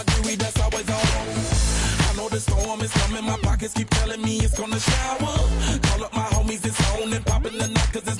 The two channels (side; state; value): both; identical; correlation 1.00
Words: jewelry that's always on. I know the storm is coming. My pockets keep telling me it's gonna shower. Call up my homies, it's on and popping the night cause it's